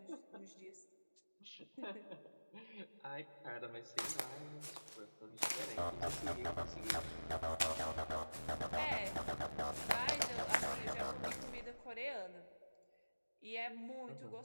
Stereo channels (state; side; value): inverted; both; correlation -1.00